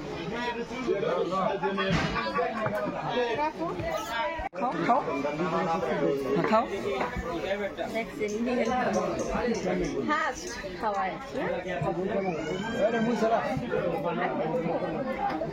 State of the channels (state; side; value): identical; both; correlation 1.00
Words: খাও খাও খাওয়ায়